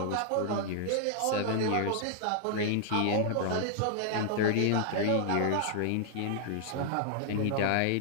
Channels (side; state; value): both; different; correlation -0.01